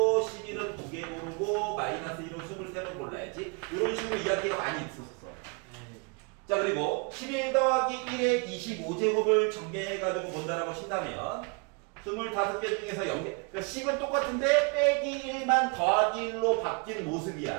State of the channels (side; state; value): left; quieter; 33.0 dB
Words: 11은 두 개 고르고 마이너스 1은 23번 골라야지. 이런 식으로 이야기가 많이 있었어. 자 그리고 11 더하기 1의 25제곱을 전개해가지고 본다라고 친다면 25개 중에서 0개 그러니까 10은 똑같은데 빼기 1만 더하기 1로 바뀐